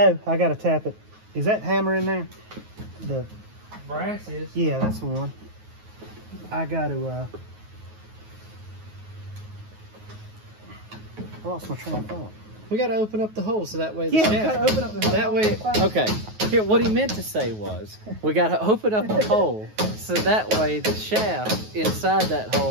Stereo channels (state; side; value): late; left; 9.4 ms